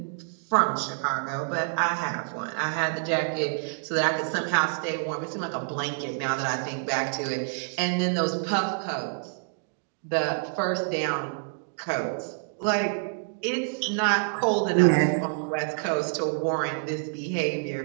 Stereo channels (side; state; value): left; silent; 60 dB below the other